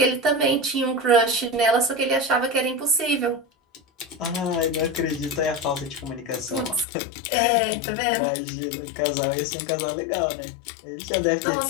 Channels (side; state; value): right; drops out; at 6.9 s